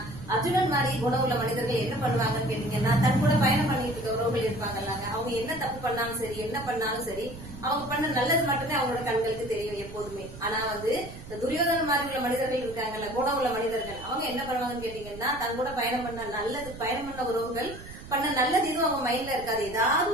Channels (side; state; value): right; noise; rumble, 14 dB below the sound